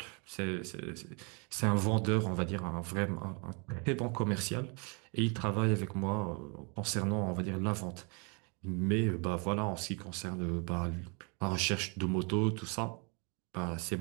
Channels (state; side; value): quieter; left; 33.6 dB